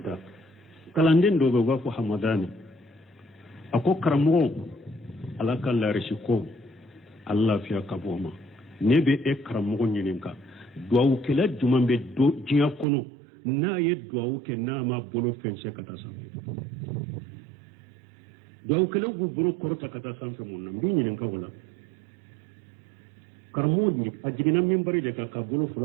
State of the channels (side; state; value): left; drops out; at 12.9 s